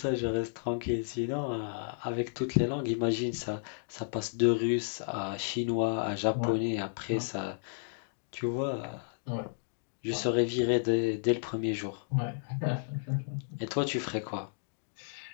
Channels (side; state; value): right; silent; digital silence